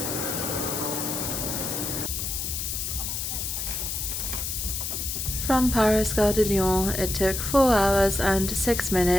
From Paris Gare de Lyon, it took 4 hours and 6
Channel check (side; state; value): left; noise; hiss, 3 dB below the sound